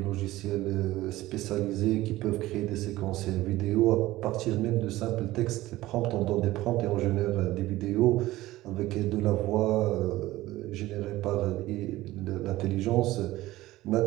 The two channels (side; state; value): left; quieter; 17.0 dB